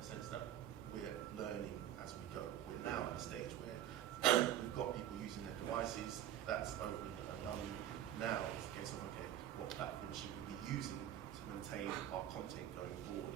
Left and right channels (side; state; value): left; quieter; 11.4 dB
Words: sense that we're learning as we go. We're now at a stage where we've got people using their devices. That's opened and done. Now it's a case of, okay, what platform should we be using to maintain our content going forward?